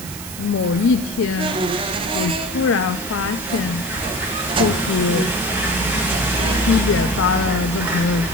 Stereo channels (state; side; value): noise; right; hiss, 12 dB below the sound